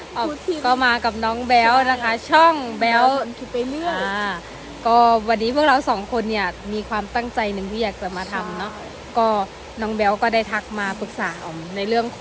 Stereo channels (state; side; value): identical; both; correlation 1.00